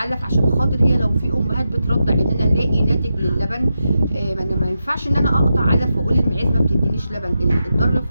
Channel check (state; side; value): inverted; both; correlation -0.88